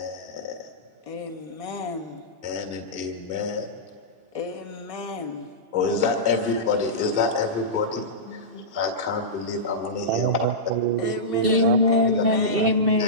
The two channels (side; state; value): left; late; 2.7 ms